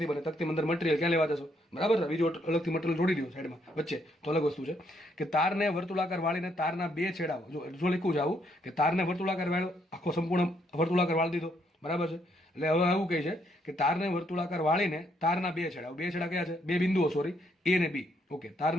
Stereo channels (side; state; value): both; normal; correlation 0.72